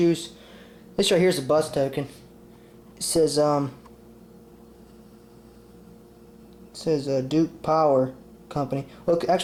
This right here is a bus token. It says Duke Power Company. Well,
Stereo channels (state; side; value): identical; both; correlation 1.00